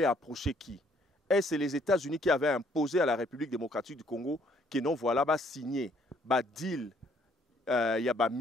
approché qui. Est-ce les États-Unis qui avaient imposé à la République démocratique du Congo que non voilà ba signé ba deal ya ba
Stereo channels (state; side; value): normal; both; correlation 0.65